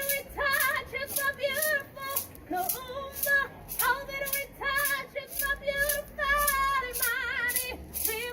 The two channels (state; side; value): identical; both; correlation 1.00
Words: we touch is so beautiful. Kuumba, all that we touch is so beautiful. Imani, we